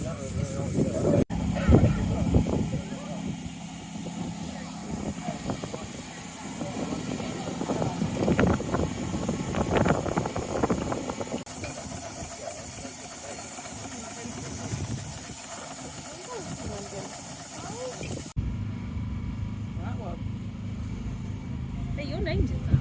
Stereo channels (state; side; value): identical; both; correlation 1.00